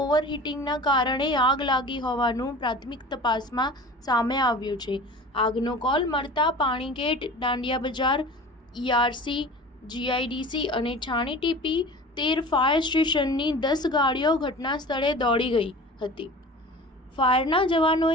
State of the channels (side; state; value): both; normal; correlation 0.39